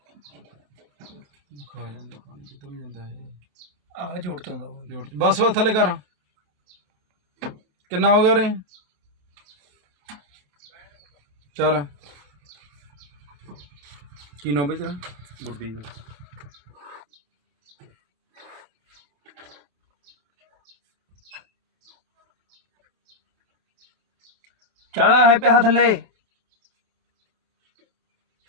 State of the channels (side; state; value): left; late; 28 ms